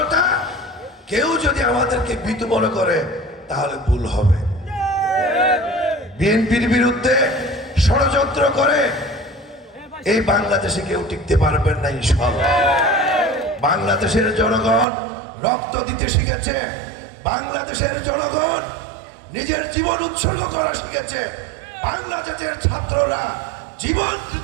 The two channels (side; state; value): left; drops out; at 14.9 s